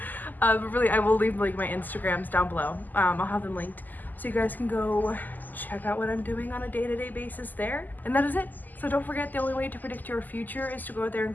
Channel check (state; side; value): late; right; 0.085 ms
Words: But really, I will leave like my Instagrams down below. I'll have them linked so you guys can go check out what I'm doing on a day-to-day basis there. And that is it. So don't forget, the only way to predict your future is to go out there and